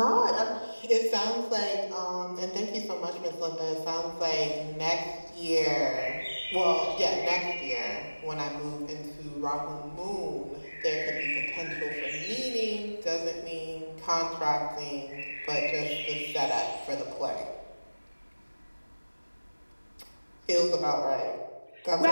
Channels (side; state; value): both; inverted; correlation -1.00